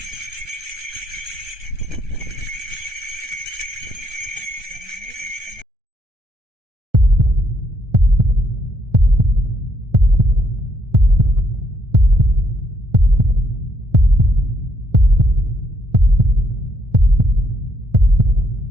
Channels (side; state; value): left; late; 1.3 ms